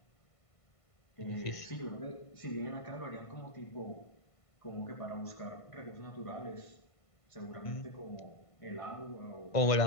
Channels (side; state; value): right; late; 1.5 ms